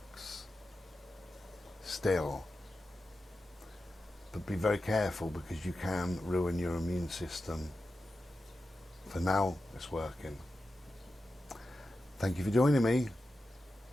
still. But be very careful, because you can ruin your immune system. For now, it's working. Thank you for joining me.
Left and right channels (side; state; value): both; normal; correlation 0.91